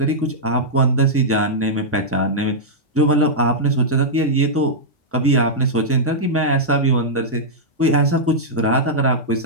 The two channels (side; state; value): both; normal; correlation -0.09